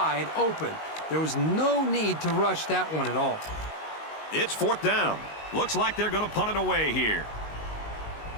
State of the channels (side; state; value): right; late; 19 ms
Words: open. There was no need to rush that one at all. It's 4th down. Looks like they're going to punt it away here.